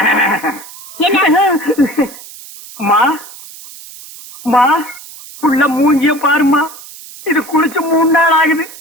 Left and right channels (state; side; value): noise; right; hiss, 17 dB below the sound